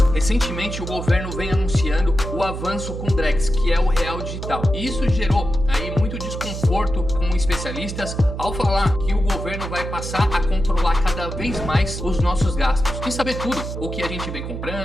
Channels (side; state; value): right; noise; hum, 6 dB below the sound